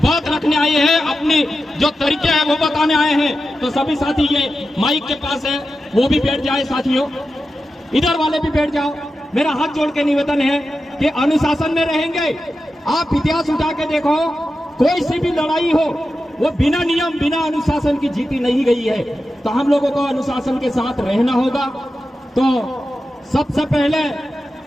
रखने आए हैं, अपनी जो तरीके हैं वो बताने आए हैं। तो सभी साथी ये माइक के पास है, वो भी बैठ जाए साथियों, इधर वाले भी बैठ जाओ। मेरा हाथ जोड़ के निवेदन है कि अनुशासन में रहेंगे। आप इतिहास उठा के देखो, कोई सी भी लड़ाई हो वो बिना नियम बिना अनुशासन की जीती नहीं गई है। तो हम लोगों को अनुशासन के साथ रहना होगा। तो सबसे पहले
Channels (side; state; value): both; normal; correlation 0.91